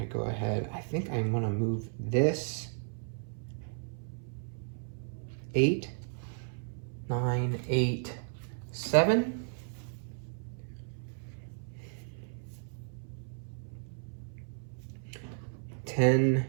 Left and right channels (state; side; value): silent; left; 55 dB below the other